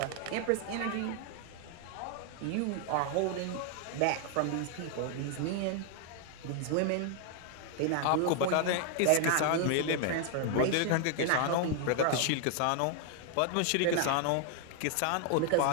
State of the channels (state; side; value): different; both; correlation 0.00